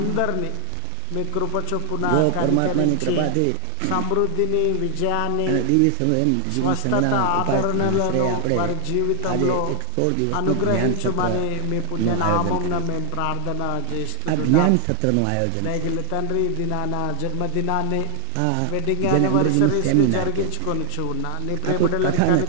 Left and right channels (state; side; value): different; both; correlation 0.00